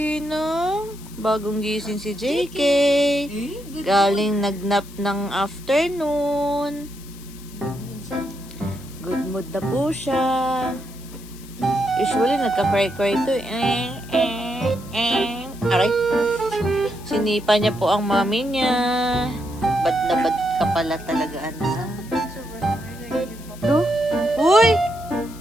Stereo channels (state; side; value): noise; left; hiss, 20 dB below the sound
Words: Bagong gising si JK. Galing nagnap ng afternoon. Good mood na po siya. Usually, nagka-cry-cry ito. Aray. Sinipa niya po ang mami niya. Bad na bad ka pala talaga, anak. No? Uy!